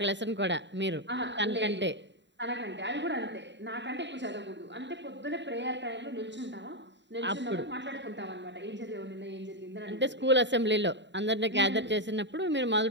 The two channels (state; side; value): late; left; 0.52 ms